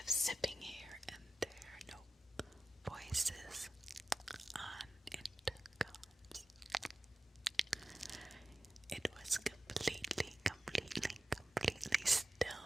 zipping here and there, no voices on intercoms. It was completely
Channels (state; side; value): normal; both; correlation 0.93